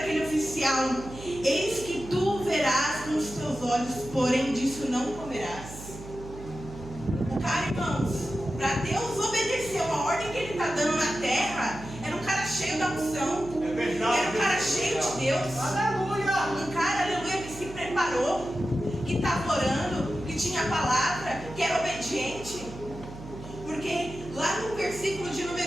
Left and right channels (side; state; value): right; noise; hum, 14 dB below the sound